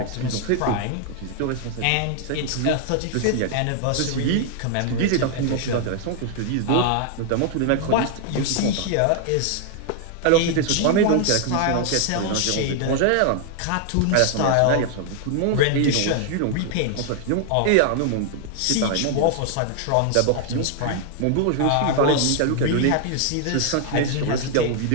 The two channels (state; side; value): different; both; correlation 0.00